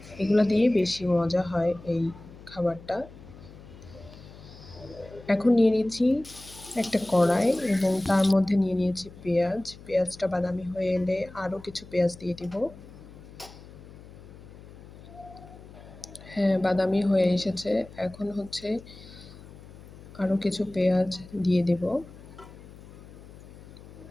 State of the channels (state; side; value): noise; left; hum, 18 dB below the sound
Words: এগুলা দিয়ে বেশি মজা হয় এই খাবারটা। এখন নিয়ে নিচ্ছি একটা কড়াই এবং তার মধ্যে নিয়ে নিয়েছি পেঁয়াজ। পেঁয়াজটা বাদামি হয়ে এলে আরও কিছু পেঁয়াজ দিয়ে দিব। হ্যাঁ, বাদামি হয়ে এসেছে। এখন আরও কিছু পেঁয়াজ দিয়ে দেব।